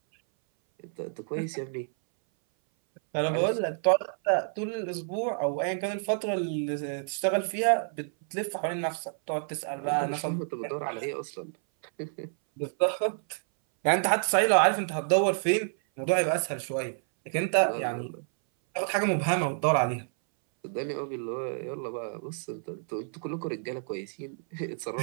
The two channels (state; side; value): silent; left; 59 dB below the other